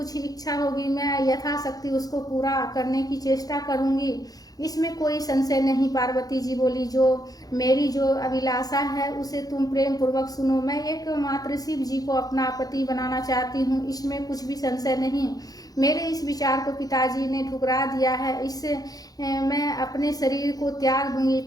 इच्छा होगी मैं यथाशक्ति उसको पूरा करने की चेष्टा करूंगी, इसमें कोई संशय नहीं। पार्वती जी बोली, मेरी जो अभिलाषा है उसे तुम प्रेम पूर्वक सुनो। मैं एकमात्र शिव जी को अपना पति बनाना चाहती हूँ, इसमें कुछ भी संशय नहीं। मेरे इस विचार को पिताजी ने ठुकरा दिया है, इससे मैं अपने शरीर को त्याग दूंगी।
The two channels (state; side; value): late; right; 0.18 ms